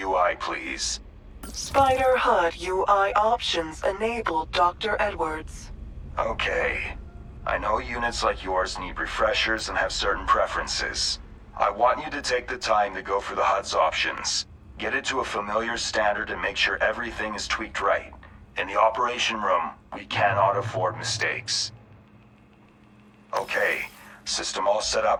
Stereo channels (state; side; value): identical; both; correlation 1.00